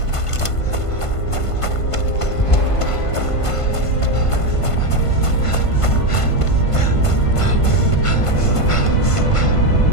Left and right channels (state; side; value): late; right; 1.5 ms